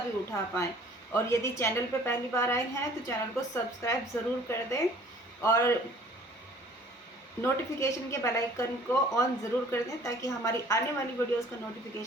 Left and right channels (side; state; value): both; normal; correlation 0.53